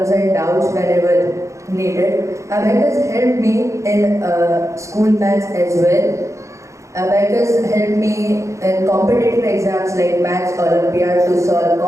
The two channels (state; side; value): late; left; 0.15 ms